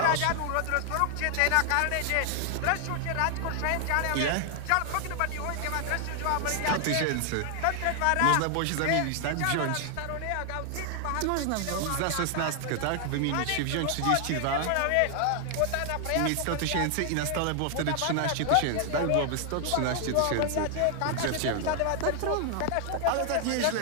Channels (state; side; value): different; both; correlation 0.00